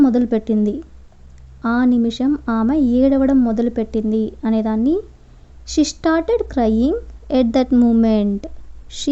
మొదలుపెట్టింది. ఆ నిమిషం ఆమె ఏడవడం మొదలుపెట్టింది అనేదాన్ని she started crying at that moment.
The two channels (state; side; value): identical; both; correlation 1.00